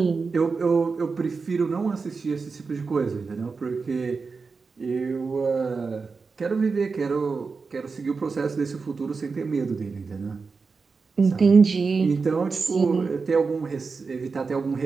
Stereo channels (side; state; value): left; quieter; 4.7 dB